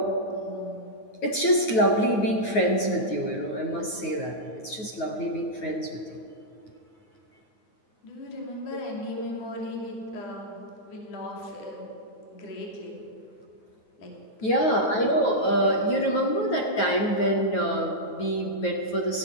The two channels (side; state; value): right; late; 9.3 ms